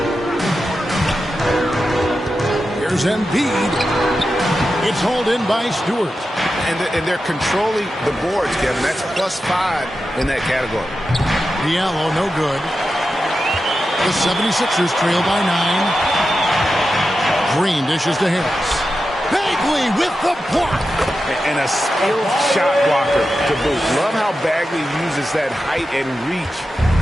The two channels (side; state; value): both; normal; correlation 0.91